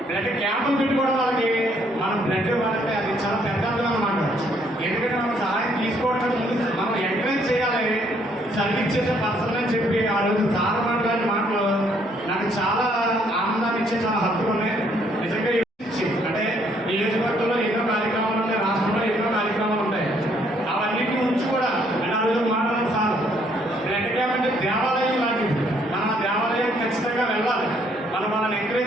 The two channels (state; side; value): normal; both; correlation 0.67